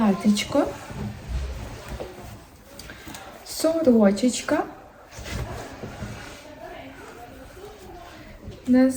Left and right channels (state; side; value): identical; both; correlation 1.00